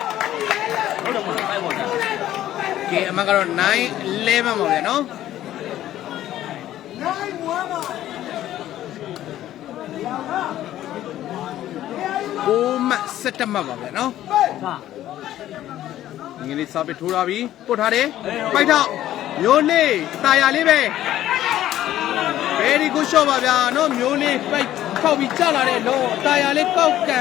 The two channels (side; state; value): right; quieter; 13.0 dB